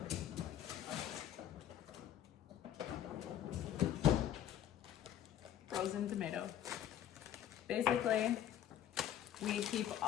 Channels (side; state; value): right; quieter; 10.7 dB